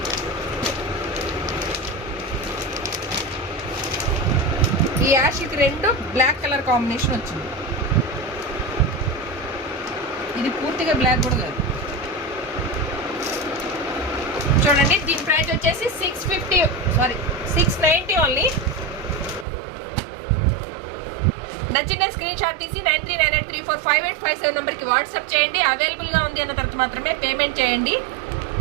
ఈ యాష్కి రెండు బ్లాక్ కలర్ కాంబినేషన్ వచ్చింది. ఇది పూర్తిగా బ్లాక్ కూడా కాదు చూడండి. దీని ప్రైస్ వచ్చేసి 690 ఓన్లీ. నచ్చిన స్క్రీన్ షాట్ తీసి 9398345857 నెంబర్కి వాట్సాప్ చేయండి. అవైలబుల్గా ఉంది అన్న తర్వాత మాత్రమే పేమెంట్ చేయండి.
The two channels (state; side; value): drops out; left; at 19.5 s